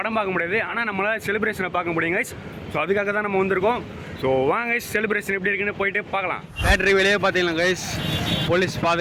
பார்க்க முடியாது. ஆனால் நம்மளால் செலிப்ரேஷனை பார்க்க முடியும் கைஸ். ஸோ அதுக்காக தான் நம்ம வந்திருக்கோம். ஸோ வாங்க கைஸ், செலிப்ரேஷன் எப்படி இருக்குன்னு போயிட்டு பார்க்கலாம். தேட்டர் வெளியே பார்த்தீங்களா கைஸ், போலீஸ்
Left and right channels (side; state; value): both; identical; correlation 1.00